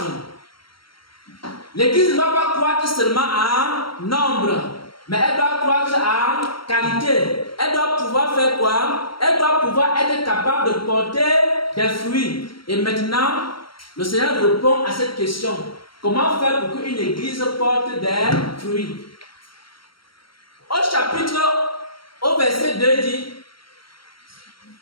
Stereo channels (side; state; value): right; late; 0.74 ms